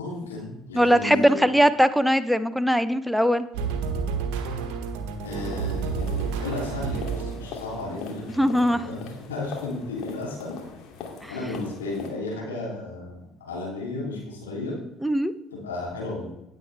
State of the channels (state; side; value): normal; both; correlation 0.79